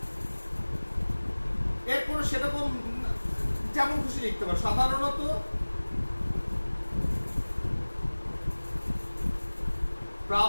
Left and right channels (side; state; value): both; inverted; correlation -1.00